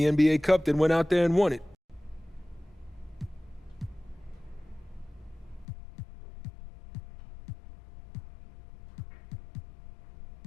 NBA Cup, then went out there and won it.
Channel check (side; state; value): right; drops out; at 5.7 s